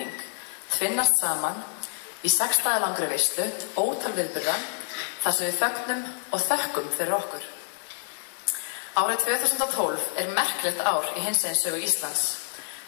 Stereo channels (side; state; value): right; silent; digital silence